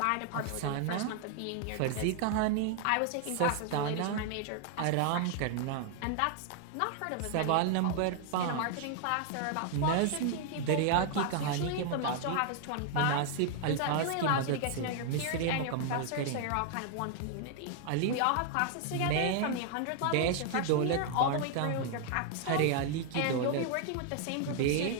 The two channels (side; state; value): both; different; correlation 0.00